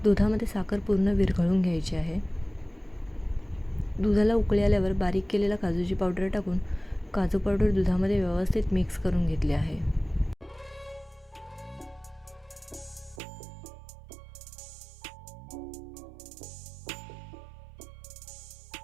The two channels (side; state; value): left; drops out; at 13.2 s